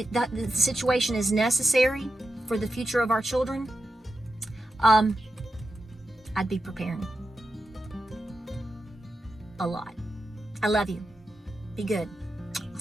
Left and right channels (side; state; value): both; normal; correlation 0.89